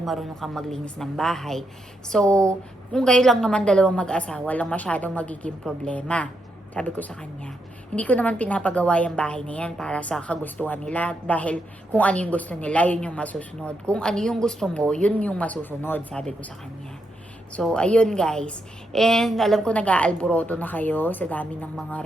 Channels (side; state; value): both; normal; correlation 0.81